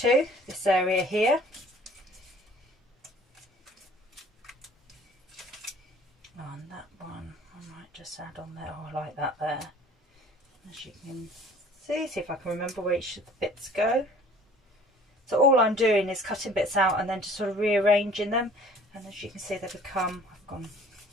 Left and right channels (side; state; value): both; normal; correlation 0.51